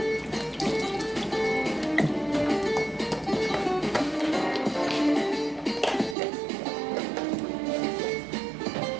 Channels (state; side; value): drops out; left; at 6.2 s